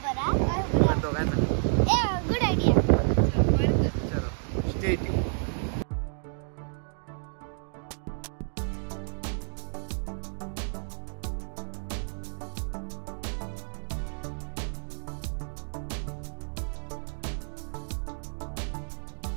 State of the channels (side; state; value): left; silent; 55 dB below the other